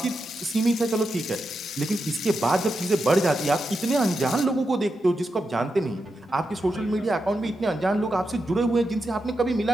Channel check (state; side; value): normal; both; correlation 0.87